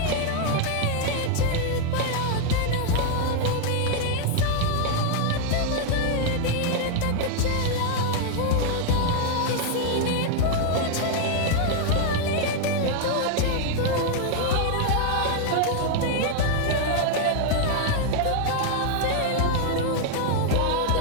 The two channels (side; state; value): both; different; correlation 0.00